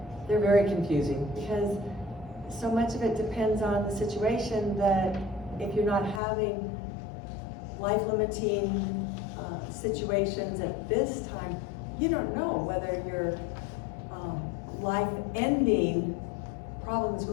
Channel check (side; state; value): right; drops out; at 6.2 s